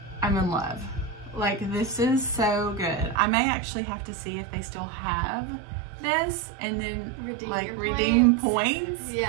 I'm in love. Like, this is so good. I may actually have to see if they still have this and then redeem points.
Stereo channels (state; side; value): drops out; left; at 3.2 s